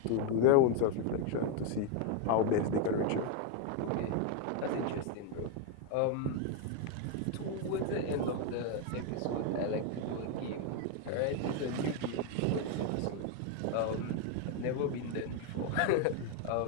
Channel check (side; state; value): both; different; correlation 0.01